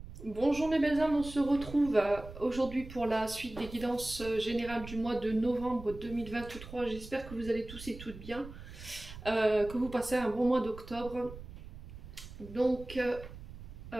Bonjour mes belles âmes, on se retrouve aujourd'hui pour la suite des guidances générales du mois de novembre 2023. J'espère que vous allez tous et toutes bien, que vous passez un bon mois d'octobre. Donc,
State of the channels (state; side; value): noise; right; rumble, 14 dB below the sound